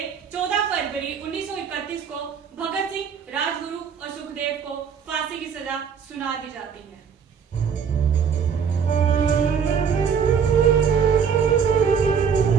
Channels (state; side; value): quieter; left; 6.9 dB